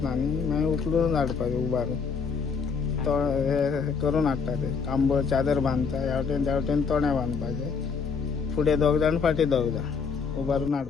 न्ही मागीर उखलून हाडपाचें उबारून हे करून हाडटा ते कांबळ चादर बांदता ह्या वटेन त्या वटेन तोंड्या बांदपाचें फुडें दोग जाण फाटीं दोग जाण उबारून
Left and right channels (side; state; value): right; quieter; 5.6 dB